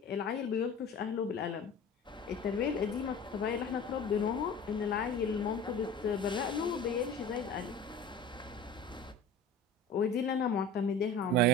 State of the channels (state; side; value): normal; both; correlation 0.37